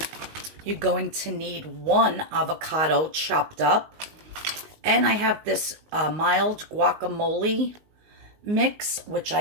You're going to need 1 avocado chopped up. And I have this mild guacamole mix, which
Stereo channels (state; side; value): late; left; 19 ms